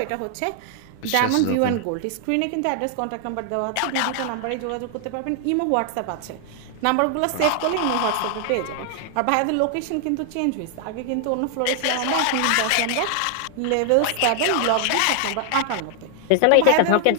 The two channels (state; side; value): different; both; correlation 0.00